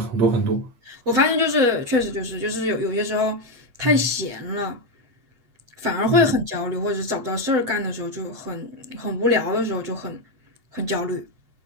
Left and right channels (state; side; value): late; left; 8.2 ms